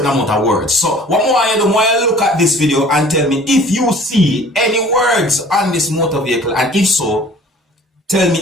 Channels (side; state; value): both; normal; correlation 0.49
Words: amount of words. So what more I do, more I look at this video and tell me if you see any words on this motor vehicle, and if so, tell me